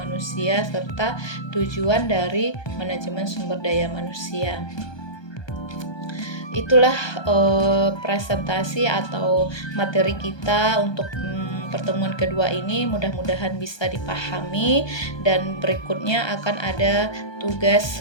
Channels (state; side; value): late; right; 1.2 ms